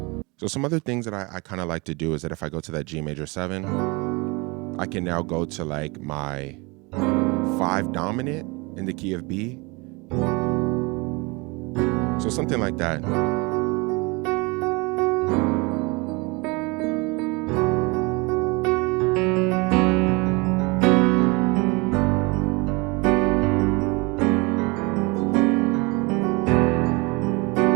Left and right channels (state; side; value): quieter; left; 27.1 dB